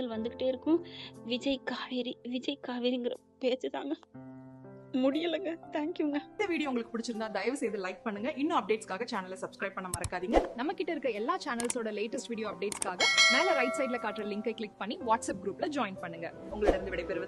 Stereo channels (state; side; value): identical; both; correlation 1.00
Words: வந்துகிட்டே இருக்கும். விஜய் காவேரிங்கிற பேச்சு தாங்க முடியலங்க. தேங்க்யூங்க. இந்த வீடியோ உங்களுக்கு பிடிச்சிருந்தா தயவு செய்து லைக் பண்ணுங்க. இன்னும் அப்டேட்ஸ்க்காக சேனலை சப்ஸ்கிரைப் பண்ண மறக்காதீங்க. நம்ம கிட்ட இருக்க எல்லா சேனல்ஸோட லேட்டஸ்ட் வீடியோ அப்டேட்ஸ்க்காக மேல ரைட் சைட்ல காட்டுற லிங்கை கிளிக் பண்ணி வாட்ஸ்அப் குரூப்ல ஜாயின் பண்ணுங்க. உங்களிடம்